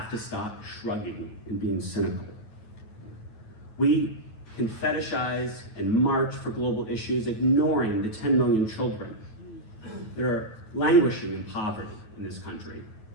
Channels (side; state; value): right; late; 9.2 ms